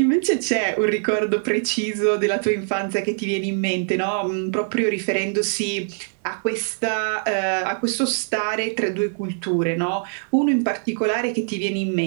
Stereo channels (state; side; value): silent; left; 64 dB below the other